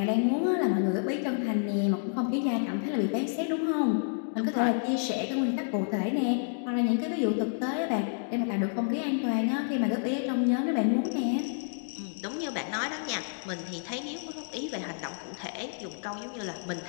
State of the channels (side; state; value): right; silent; digital silence